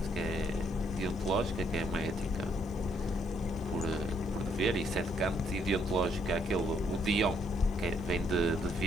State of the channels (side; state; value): left; noise; hiss, 29 dB below the sound